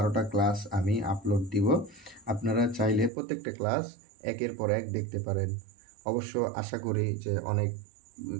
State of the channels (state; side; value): drops out; left; at 3.1 s